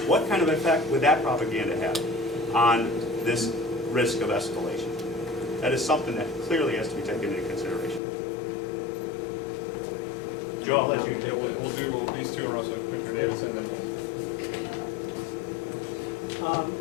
What kind of effect would that propaganda have on this risk of escalation? That is something that clearly has to be taken into consideration. Joe, I'll let you. Yeah, we'll do these two, and also Commissioner Davidson, then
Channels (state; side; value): drops out; right; at 8.0 s